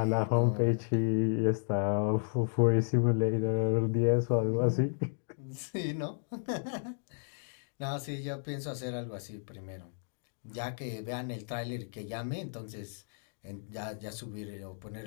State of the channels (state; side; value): silent; right; digital silence